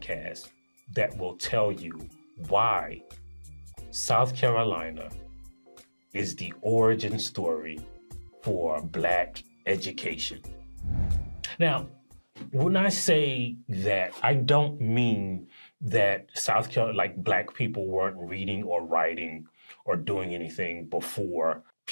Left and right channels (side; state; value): both; inverted; correlation -1.00